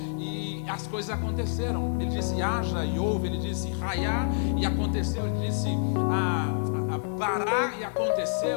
e as coisas aconteceram. Ele disse haja e houve, Ele disse raiar e aconteceu, Ele disse parar e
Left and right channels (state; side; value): silent; right; digital silence